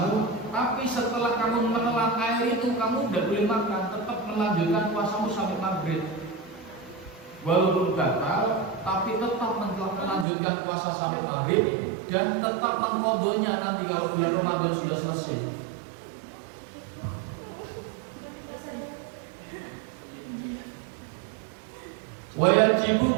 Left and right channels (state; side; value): drops out; left; at 10.2 s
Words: tapi setelah kamu menelan air itu kamu tidak boleh makan, tetap melanjutkan puasamu sampai maghrib. Walaupun batal, tapi tetap melanjutkan puasa sampai maghrib dan tetap mengqadhanya nanti kalau bulan Ramadan sudah selesai. Wajibu